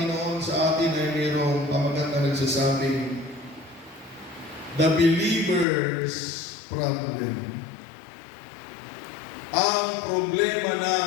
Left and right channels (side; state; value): right; drops out; at 5.7 s